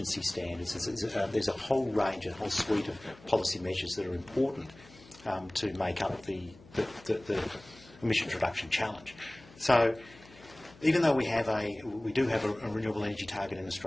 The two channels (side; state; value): left; noise; hum, 23 dB below the sound